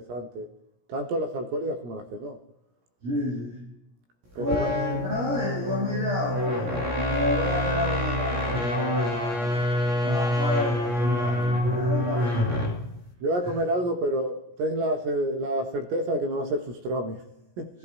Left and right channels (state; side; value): late; left; 17 ms